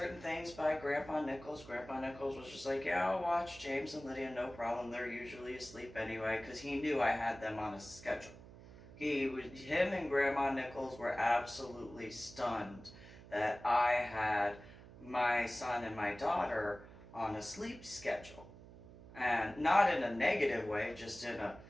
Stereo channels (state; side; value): noise; right; hum, 18 dB below the sound